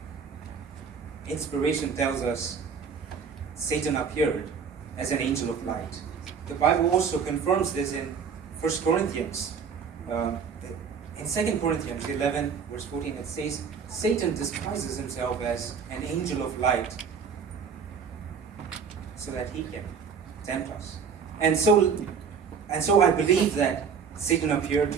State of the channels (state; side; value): quieter; left; 6.3 dB